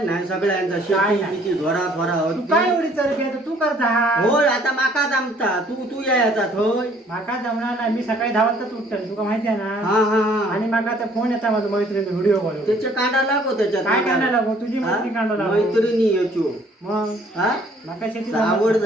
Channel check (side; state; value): both; normal; correlation 0.60